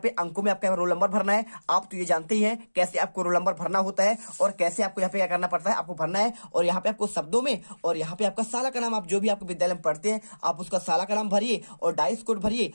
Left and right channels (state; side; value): inverted; both; correlation -1.00